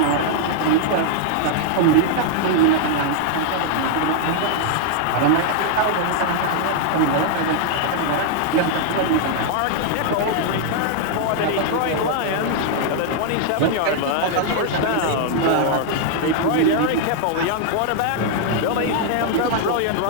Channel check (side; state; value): both; different; correlation 0.00